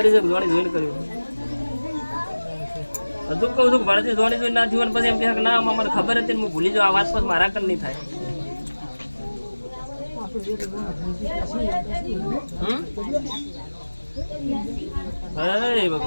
છે જોણી જોઈને કર્યું હજુ કહું છું ભણતી જોણી જોઈને ના થયું પછી એમ કહે કે ના મને ખબર હતી ને હું ભૂલી જાઉં આ વાત પછી મારા કર નહીં થાય હે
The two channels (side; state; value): both; inverted; correlation -1.00